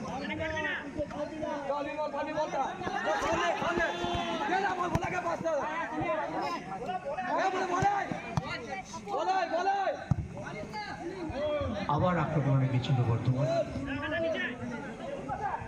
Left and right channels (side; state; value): both; identical; correlation 1.00